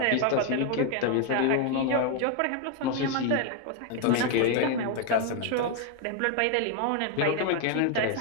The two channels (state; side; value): different; both; correlation 0.01